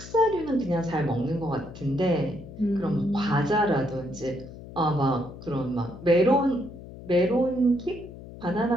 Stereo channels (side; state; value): left; noise; hum, 15 dB below the sound